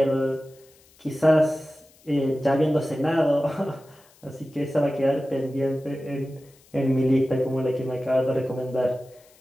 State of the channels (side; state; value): left; noise; hiss, 29 dB below the sound